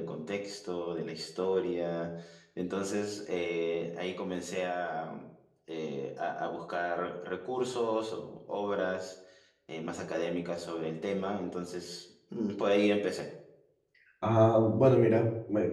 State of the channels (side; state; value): both; identical; correlation 1.00